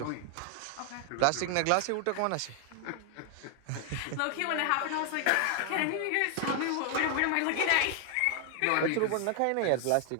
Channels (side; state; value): both; different; correlation 0.00